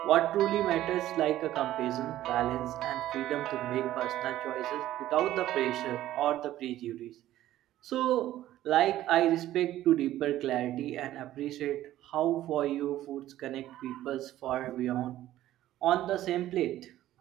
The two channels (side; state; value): left; quieter; 13.9 dB